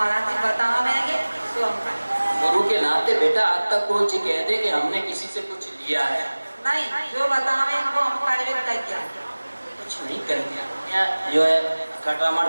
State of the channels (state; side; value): inverted; both; correlation -1.00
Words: जी बताना मैंने तो हम करें। गुरु के नाते बेटा आज तक कोई चीज कह दे कि हमने किसी से कुछ लिया है नहीं, जो बतावे इनको हम कार्य किया कुछ नहीं करेंगे। जो है खटामड़